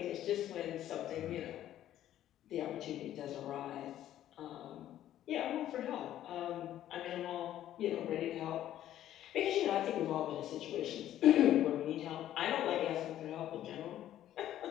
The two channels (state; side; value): quieter; right; 12.2 dB